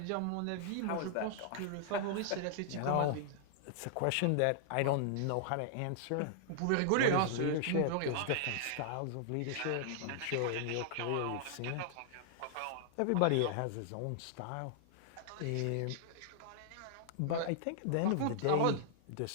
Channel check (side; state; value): both; different; correlation -0.01